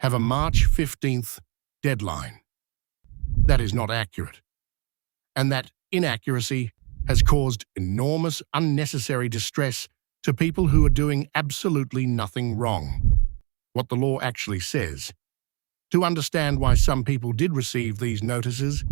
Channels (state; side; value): quieter; left; 33.2 dB